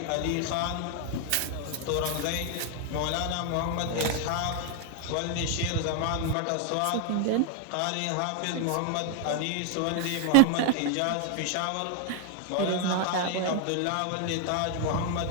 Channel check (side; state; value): both; different; correlation 0.00